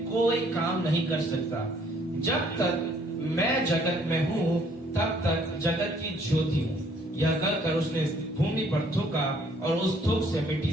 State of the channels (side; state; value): both; normal; correlation 0.62